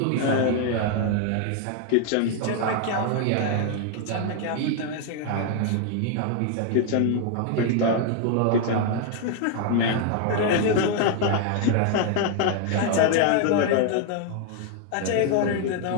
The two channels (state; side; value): different; both; correlation 0.00